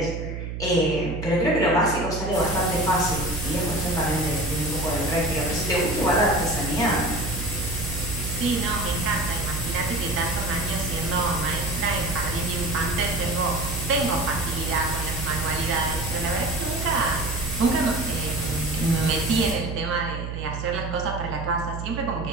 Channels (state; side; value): noise; right; hum, 6 dB below the sound